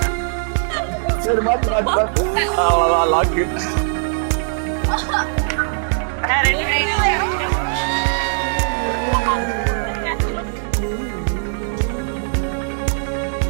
சரி, மாத்து அவ்வளோதான் லாக்கு.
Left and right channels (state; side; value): silent; left; digital silence